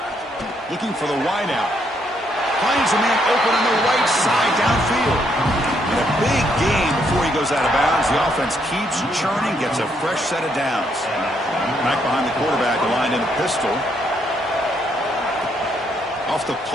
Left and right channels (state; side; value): normal; both; correlation 0.74